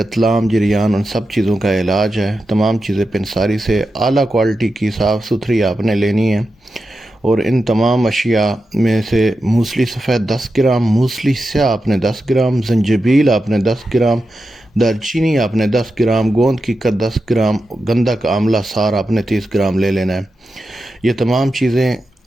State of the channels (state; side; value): normal; both; correlation 0.90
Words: جریان، ان سب چیزوں کا علاج ہے۔ تمام چیزیں پنساری سے اعلیٰ کوالٹی کی صاف ستھری آپ نے لینی ہے، اور ان تمام اشیاء میں سے موسلی سفید 10 گرام، موسلی سیاہ آپ نے 10 گرام، زنجبیل آپ نے 10 گرام، دار چینی آپ نے 10 گرام، گوند کی قد 10 گرام، گندک آملہ سار آپ نے 30 گرام لے لینا ہے۔ یہ تمام چیزیں